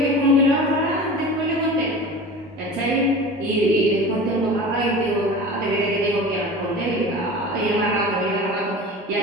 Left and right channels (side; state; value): both; normal; correlation 0.35